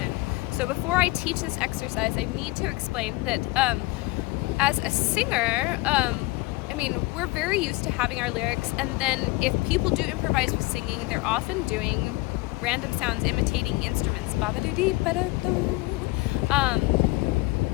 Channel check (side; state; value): right; quieter; 21.5 dB